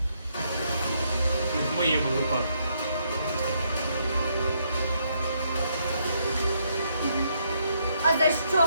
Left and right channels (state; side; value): inverted; both; correlation -0.74